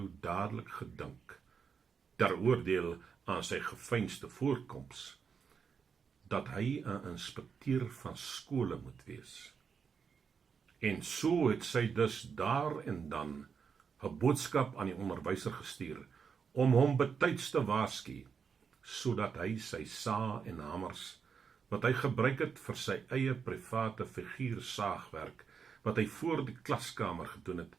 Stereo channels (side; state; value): left; quieter; 6.3 dB